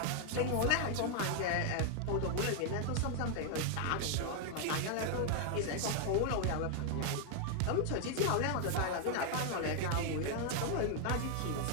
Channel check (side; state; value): both; different; correlation 0.00